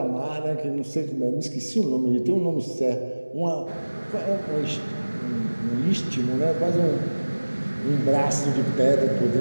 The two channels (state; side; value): inverted; both; correlation -1.00